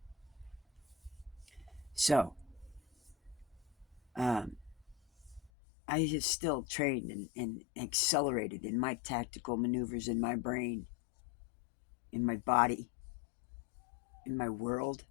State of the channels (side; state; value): right; drops out; at 5.5 s